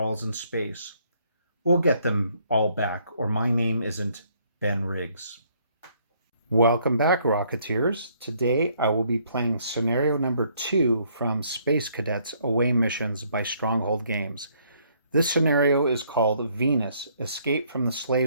in space. We'll get them all back, or my name isn't Ben Riggs. Welcome back, Rocketeers. Today I will be playing scenario number 2 from Space Cadets Away Missions by Stronghold Games. This scenario is called Venus, Escape from the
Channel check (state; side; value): inverted; both; correlation -0.67